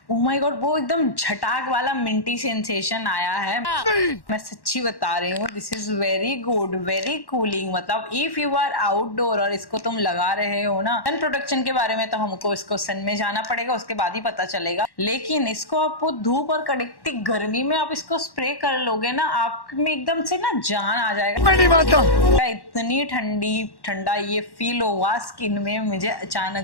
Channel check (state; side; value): late; right; 1.1 ms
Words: ओह माय गॉड, वो एकदम झटाक वाला मिंटी सेंसेशन आया है। मैं सच्ची बता रही हूँ, this is very good, very cooling. मतलब इफ यू आर आउटडोर और इसको तुम लगा रहे हो ना, सन प्रोटेक्शन के बारे में तो हमको इसको सन में जाना पड़ेगा, उसके बाद ही पता चलेगा। लेकिन इसको आप धूप और कड़कती गर्मी में आप इसको स्प्रे कर लोगे ना, आप में एकदम से ना जान आ जाएगा। इतनी ठंडा ये फील हुआ स्किन में मुझे